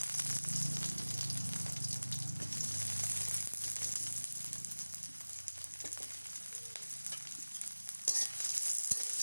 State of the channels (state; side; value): inverted; both; correlation -1.00